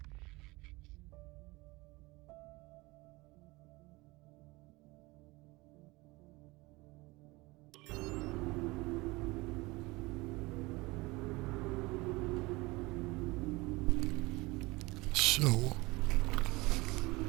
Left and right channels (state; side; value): quieter; left; 22.7 dB